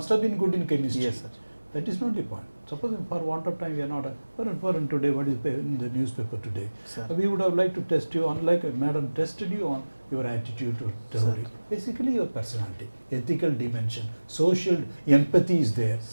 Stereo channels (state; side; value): inverted; both; correlation -1.00